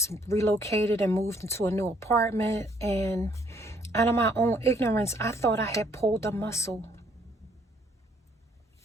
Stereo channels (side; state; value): both; normal; correlation 0.65